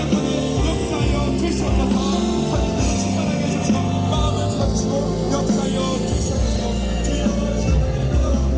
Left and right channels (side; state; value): both; identical; correlation 1.00